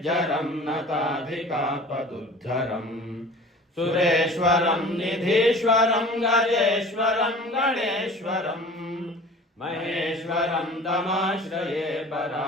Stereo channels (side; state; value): both; normal; correlation 0.43